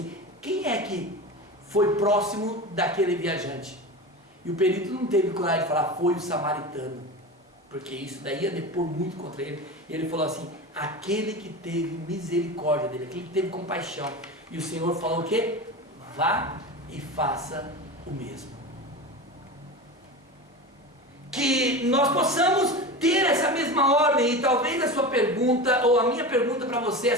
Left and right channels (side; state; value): both; normal; correlation 0.28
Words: quem é que foi próximo daquele viajante? E o perito não teve coragem de falar: foi o samaritano, porque isso daí ia depor muito contra ele. E ele falou assim: aquele que teve misericórdia dele, aquele que teve compaixão. E o Senhor falou o quê? Vá e faça o mesmo. Que nós possamos ter essa mesma ordem. E talvez a sua pergunta, ou a minha pergunta para você